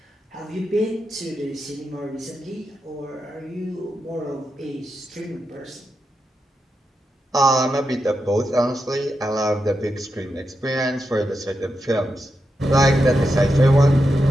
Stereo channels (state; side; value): normal; both; correlation 0.87